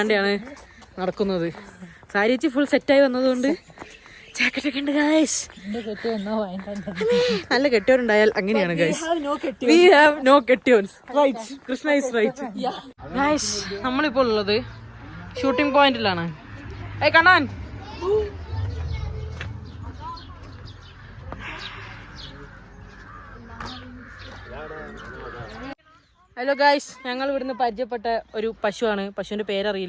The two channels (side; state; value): both; identical; correlation 1.00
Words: നടക്കുന്നത്. സാരിച്ച് ഫുൾ സെറ്റായി വന്നതുകൊണ്ട് ജാക്കറ്റൊക്കെ ഉണ്ട് ഗൈസ്. നല്ല കെട്ടിയോരുണ്ടായാൽ അങ്ങനെയാണ് ഗൈസ്. വി ഹാവ് നോ കെട്ടിയോൻസ്. Right, Krishna is right. Guys, നമ്മളിപ്പോൾ ഉള്ളത് ഷൂട്ടിംഗ് പോയിന്റിലാണ്. ഏയ് കണ്ണാൻ, ഹലോ ഗൈസ്, ഞങ്ങൾ ഇവിടുന്ന് പരിചയപ്പെട്ട ഒരു പശുവാണ്. പശുവിന്റെ